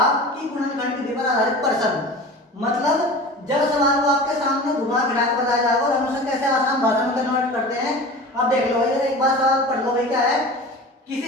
की गुणनखंड विधि पर आधारित प्रश्न, मतलब जब सवाल को आपके सामने घुमा फिरा कर बताया जाएगा और हम उसे कैसे आसान भाषा में कन्वर्ट करते हैं। अब देख लो भाई, एक बार सवाल पढ़ लो भाई। क्या है?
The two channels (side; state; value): both; normal; correlation 0.36